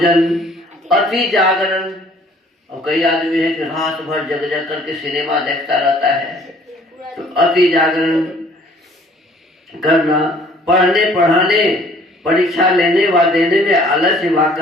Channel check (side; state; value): both; normal; correlation 0.56